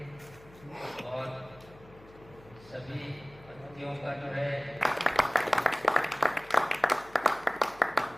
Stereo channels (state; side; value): noise; left; hum, 23 dB below the sound